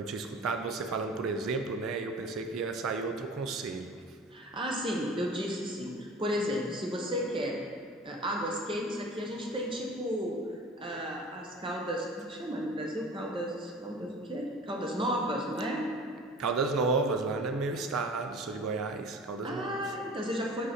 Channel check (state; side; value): normal; both; correlation 0.42